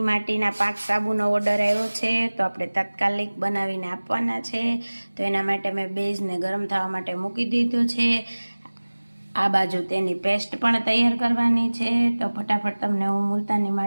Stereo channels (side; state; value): both; inverted; correlation -1.00